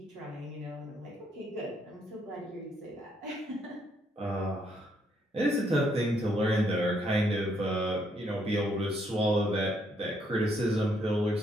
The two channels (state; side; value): normal; both; correlation 0.72